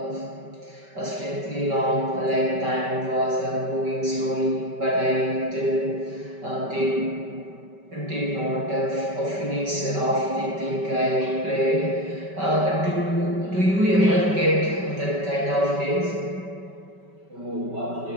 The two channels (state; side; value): late; left; 5.2 ms